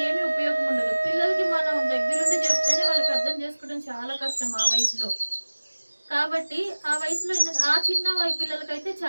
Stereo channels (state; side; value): inverted; both; correlation -1.00